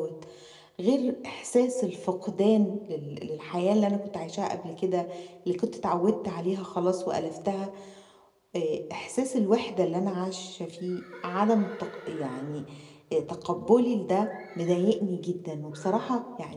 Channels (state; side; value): identical; both; correlation 1.00